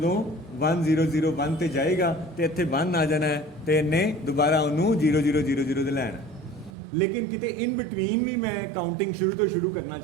1 0 0 1 ਤੇ ਜਾਏਗਾ ਤੇ ਇੱਥੇ 1 ਆ ਜਾਣਾ ਹੈ ਤੇ ਇਹਨੇ ਦੁਬਾਰਾ ਉਹਨੂੰ 0 0 0 0 ਤੇ ਲੈਣਾ। ਲੇਕਿਨ ਕਿਤੇ ਇਨ ਬਿਟਵੀਨ ਵੀ ਮੈਂ ਕਾਊਂਟਿੰਗ ਸ਼ੁਰੂ ਤੋਂ ਸ਼ੁਰੂ ਕਰਨਾ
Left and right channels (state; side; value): drops out; left; at 6.7 s